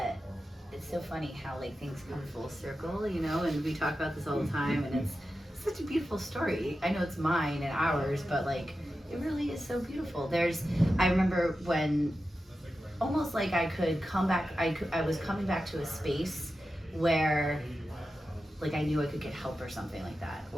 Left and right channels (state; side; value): normal; both; correlation 0.91